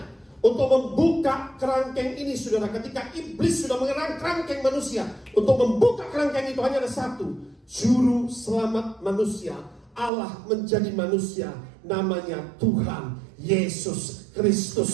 Untuk membuka kerangkeng ini saudara, ketika iblis sudah mengerang kerangkeng manusia, untuk membuka kerangkeng itu hanya ada satu, juru selamat manusia, Allah menjadi manusia, namanya Tuhan Yesus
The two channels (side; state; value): left; drops out; at 10.1 s